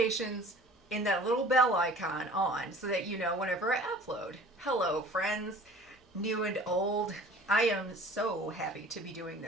in that little bell icon on so that you know whenever I upload. Hello friends, new and old. I am so happy to be doing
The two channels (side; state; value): both; normal; correlation 0.46